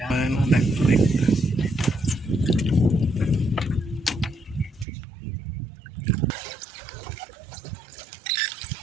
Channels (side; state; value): left; drops out; at 4.9 s